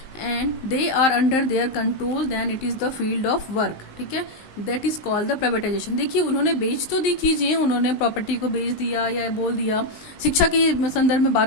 and they are under their control then it is the field of work, ठीक है, that is called the privatisation. देखिए उन्होंने बेच तो दी चीज़ें, उन्होंने प्रॉपर्टी को बेच दिया या बोल दिया, शिक्षा के संदर्भ में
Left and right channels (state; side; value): late; right; 19 ms